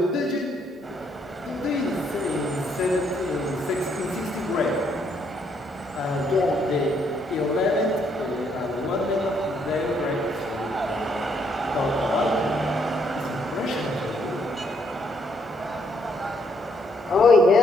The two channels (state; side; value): normal; both; correlation 0.71